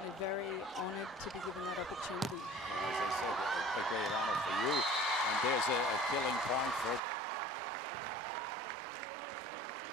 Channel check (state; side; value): drops out; left; at 7.0 s